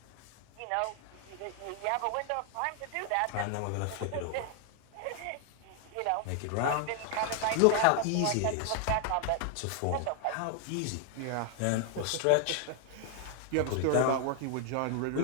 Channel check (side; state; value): both; different; correlation 0.00